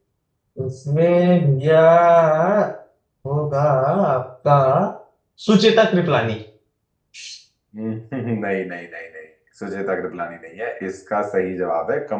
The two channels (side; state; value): both; identical; correlation 1.00